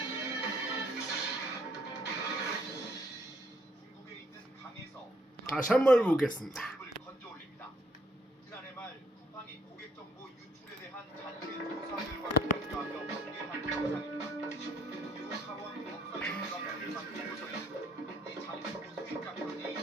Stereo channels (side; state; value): both; normal; correlation 0.66